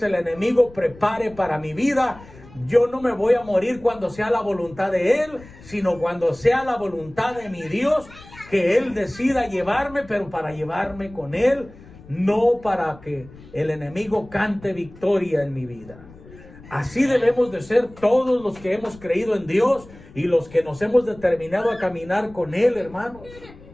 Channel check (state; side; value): noise; left; rumble, 21 dB below the sound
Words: el enemigo prepare para mi vida, yo no me voy a morir cuando sea la voluntad de Él, sino cuando sea la voluntad de mi Dios, que Él decida llevarme, pero para llevarme con Él no para que el enemigo cante victoria en mi vida. Así debemos de ser todos los que hemos creído en Dios y los que nos hemos determinado a caminar con Él, hermanos.